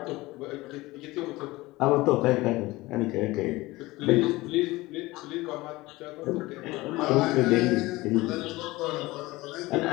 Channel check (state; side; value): quieter; right; 20.1 dB